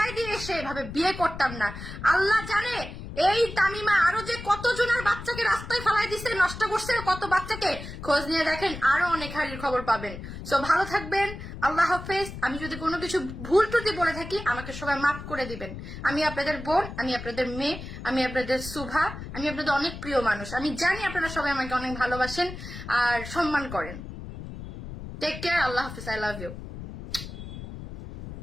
দিয়ে এসে এভাবে বিয়ে করতাম না। আল্লাহ জানে এই তামিমা আরো যে কতজনের বাচ্চাকে রাস্তায় ফেলাই দিচ্ছে, নষ্ট করছে, কত বাচ্চাকে খোঁজ নিয়ে দেখেন, আরো অনেক হারির খবর পাবেন। সো ভালো থাকবেন, আল্লাহ হাফেজ। আমি যদি কোনো কিছু ভুল ত্রুটি বলে থাকি আমাকে সবাই মাফ করে দিবেন। আমি আপনাদের বোন, আমি আপনাদের মেয়ে, আমি আপনাদের সুভা, আমি আপনাদের অনেক প্রিয় মানুষ। আমি জানি আপনারা সবাই আমাকে অনেক ভালোবাসেন আর সম্মান করেন। টেক কেয়ার, আল্লাহ হাফিজ, আই লাভ ইউ।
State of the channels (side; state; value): left; noise; rumble, 10 dB below the sound